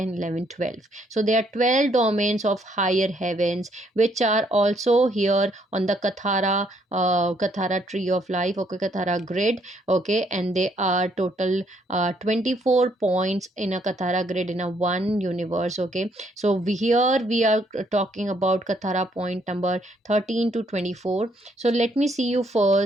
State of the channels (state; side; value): normal; both; correlation 0.70